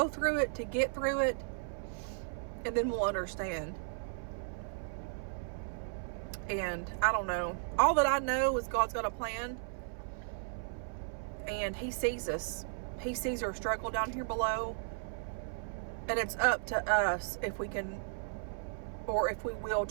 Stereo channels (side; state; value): left; silent; 54 dB below the other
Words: through it to get through it. And then we'll understand. And I don't know. All that I know is God's got a plan. And He sees us. He sees our struggle down here below. And it's up to us if we can, or if we will,